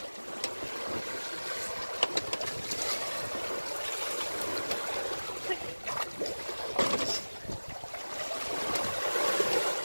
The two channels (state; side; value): inverted; both; correlation -1.00